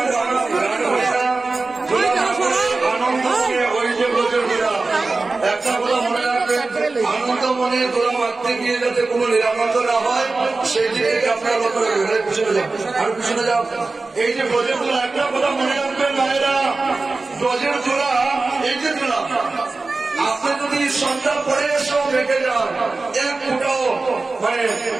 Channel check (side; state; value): left; quieter; 3.6 dB